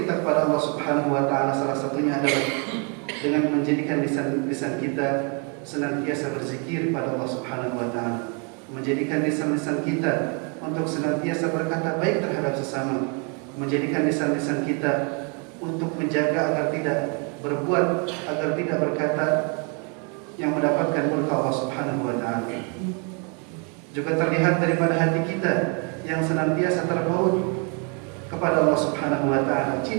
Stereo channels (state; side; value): quieter; left; 36.1 dB